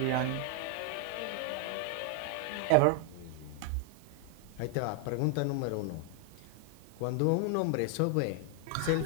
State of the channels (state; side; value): different; both; correlation 0.00